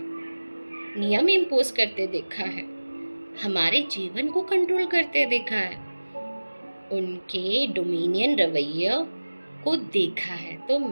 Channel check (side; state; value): both; inverted; correlation -1.00